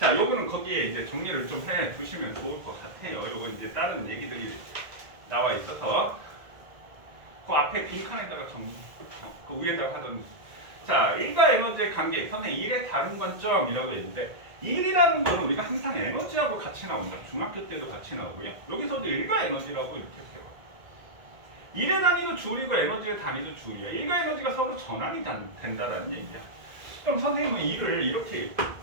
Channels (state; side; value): late; left; 1.9 ms